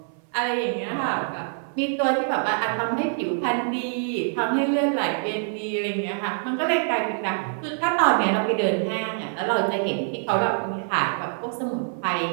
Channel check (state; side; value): silent; left; 62 dB below the other